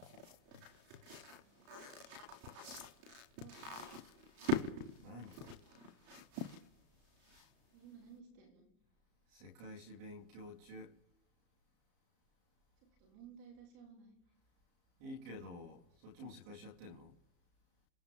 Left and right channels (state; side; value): late; left; 34 ms